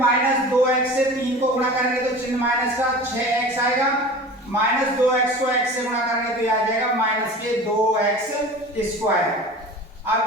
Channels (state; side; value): normal; both; correlation 0.37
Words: से 3 को गुणा करेंगे तो चिन्ह माइनस का 6x आएगा, -2x को x से गुणा करेंगे तो ये आ जाएगा -2x²। अब